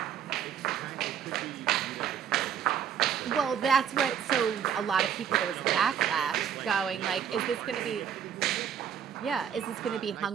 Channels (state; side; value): quieter; left; 8.5 dB